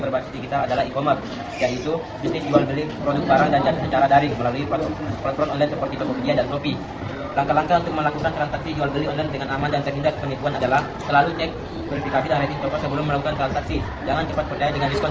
digital adalah e-commerce, yaitu bisnis jual beli produk barang dan jasa secara daring melalui platform online seperti Tokopedia dan Shopee. Langkah-langkah untuk melakukan transaksi jual beli online dengan aman dan terhindar penipuan adalah selalu cek verifikasi dan rating toko sebelum melakukan transaksi. Jangan cepat percaya dengan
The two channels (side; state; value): both; identical; correlation 1.00